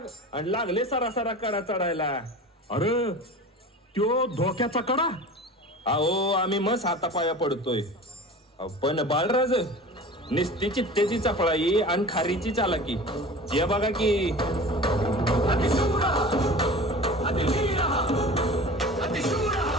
आणि लागले सरासरा कडा चढायला. अरे त्यो धोक्याचा कडा. अहो आम्ही मस्त हातापाया पडतोय. पण बाळराज निस्ती चित्तेची चपळाई आणि खारीची चालाकी हे बघा की.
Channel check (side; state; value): both; normal; correlation 0.37